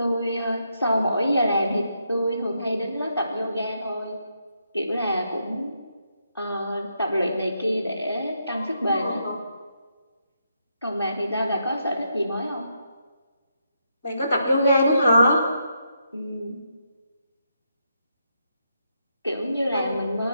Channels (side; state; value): both; inverted; correlation -0.80